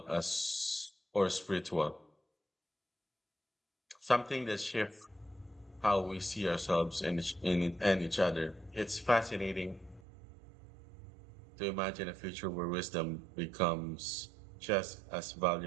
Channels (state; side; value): drops out; left; at 10.0 s